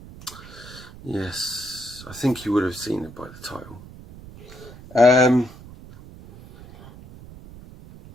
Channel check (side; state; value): right; noise; rumble, 17 dB below the sound